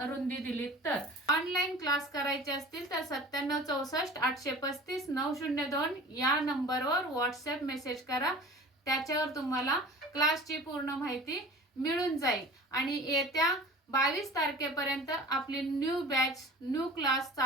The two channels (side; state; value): both; normal; correlation 0.41